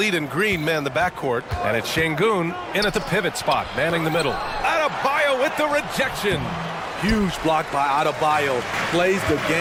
and Green man the backcourt, and it's Şengün in at the pivot spot, manning the middle. Adebayo with the rejection. Huge block by Adebayo. Plays the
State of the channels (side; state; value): both; identical; correlation 1.00